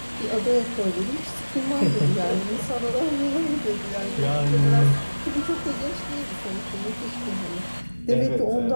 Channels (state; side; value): inverted; both; correlation -1.00